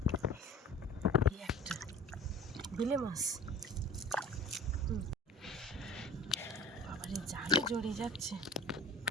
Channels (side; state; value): both; normal; correlation 0.40